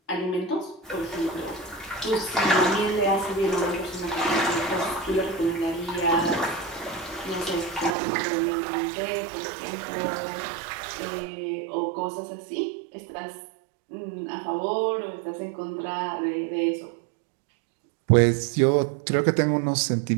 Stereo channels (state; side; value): drops out; left; at 8.0 s